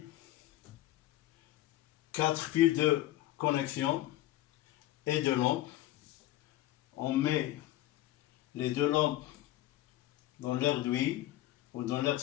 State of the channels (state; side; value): quieter; right; 15.2 dB